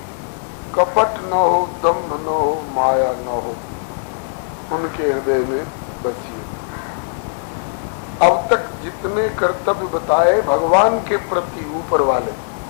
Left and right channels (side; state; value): right; silent; digital silence